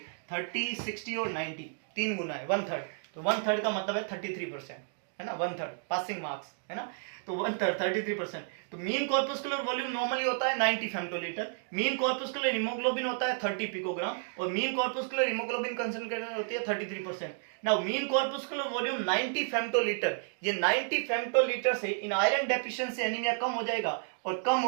30, 60 और 90 तीन गुना है, 1/3, तो 1/3 का मतलब है 33%, है ना, 1/3 पासिंग मार्क्स, है ना, तो 1/3 33%। तो मीन कॉर्पस्कुलर वॉल्यूम नॉर्मली होता है 90 फेम्टोलीटर, मीन कॉर्पस्कुलर हीमोग्लोबिन होता है 30 पिकोग्राम, और मीन कॉर्पस्कुलर हीमोग्लोबिन कंसंट्रेशन होती है 33%। नाउ मीन कॉर्पस्कुलर वॉल्यूम 90 फेम्टोलीटर, ये 90 फेम्टोलीटर से इन आयरन डेफिशिएंसी एनीमिया कम हो जाएगा, और कम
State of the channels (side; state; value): left; silent; 57 dB below the other